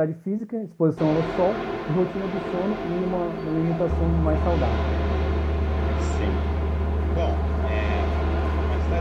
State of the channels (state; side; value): identical; both; correlation 1.00